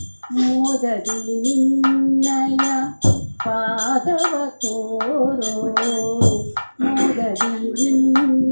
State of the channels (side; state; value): both; inverted; correlation -1.00